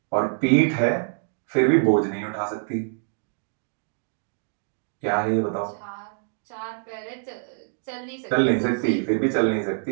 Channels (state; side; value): silent; left; 62 dB below the other